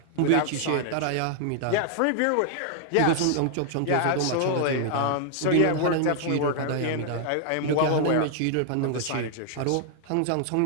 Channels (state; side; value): different; both; correlation 0.00